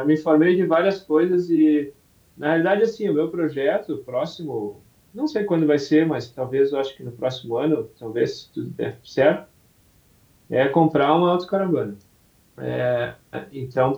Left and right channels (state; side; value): identical; both; correlation 1.00